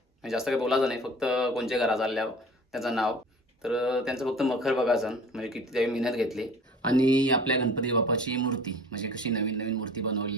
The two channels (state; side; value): normal; both; correlation 0.44